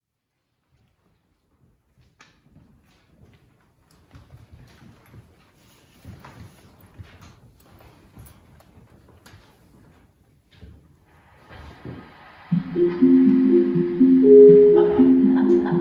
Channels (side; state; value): both; identical; correlation 1.00